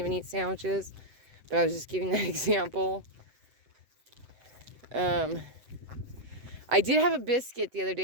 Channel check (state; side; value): late; left; 7.8 ms